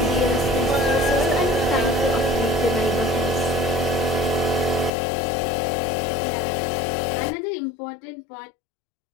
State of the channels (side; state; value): right; drops out; at 4.9 s